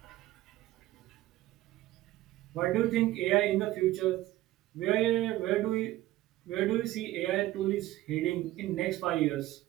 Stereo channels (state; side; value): quieter; left; 15.9 dB